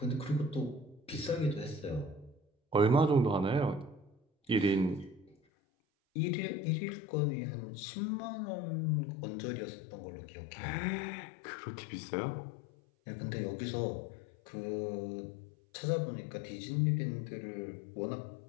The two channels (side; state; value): right; drops out; at 5.4 s